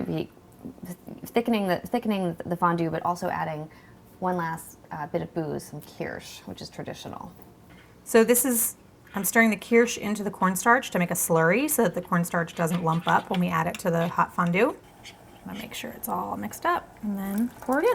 be thickening the fondue, but also adding one last bit of booze, some kirsch, which is traditional. So this is, I'm stirring the kirsch into the cornstarch to make a slurry so that the cornstarch doesn't lump up when we add it to the hot fondue. I'm gonna make sure it's all mixed up and then pour it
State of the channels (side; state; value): both; identical; correlation 1.00